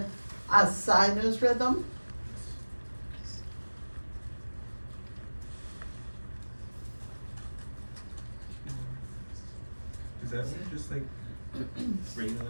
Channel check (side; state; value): both; inverted; correlation -1.00